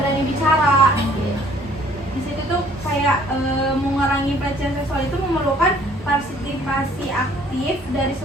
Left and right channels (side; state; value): both; normal; correlation 0.58